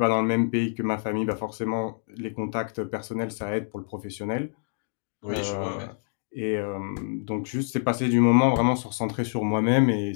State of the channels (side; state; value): right; silent; digital silence